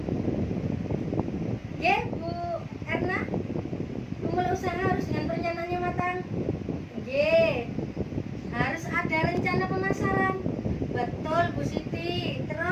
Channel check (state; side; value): identical; both; correlation 1.00